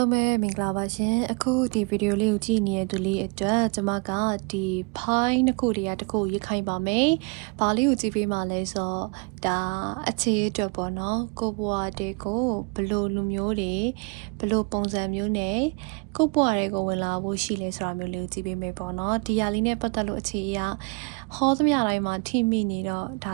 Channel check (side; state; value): left; quieter; 30.4 dB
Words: ုံးပဲမင်္ဂလာပါရှင်အခုဒီဗီဒီယိုလေးကိုကြည့်နေတဲ့သူလေးအတွက်ကျွန်မကဒီ file နှစ်ခုတည်းတစ်ခုရေးခိုင်းပါမယ်။ဘာလေးကိုကြည့်ပေးမှလဲဆိုတော့ဒါအခြေအတွက်ပေါ့နော်။ကိုဘွားတဲ့ကိုဘလို့လူမျိုးတွေဘလို့ပုံစံမျိုးနဲ့ကိုဘွားတွေကိုဝင်လာဖို့ရှိလဲဆိုတာမျိုးလေးကိုကြည့်ပေးမယ်ပေါ့နော်။ဒီဟာလေးနဲ့ပတ်သက်လို့အခြေအရဟောသမျှတိုင်းမှာထိမိနေတော့ဒါ